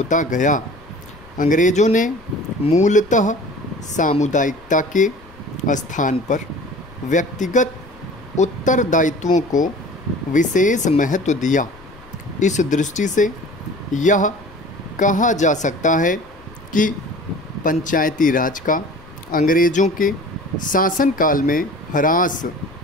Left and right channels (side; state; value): left; noise; rumble, 24 dB below the sound